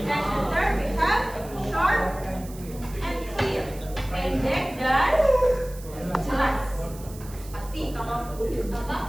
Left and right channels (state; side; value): noise; right; hiss, 19 dB below the sound